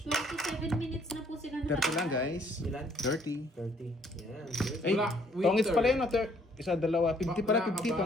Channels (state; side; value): normal; both; correlation 0.63